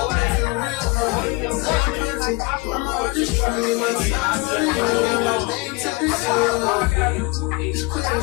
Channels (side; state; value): right; quieter; 24.2 dB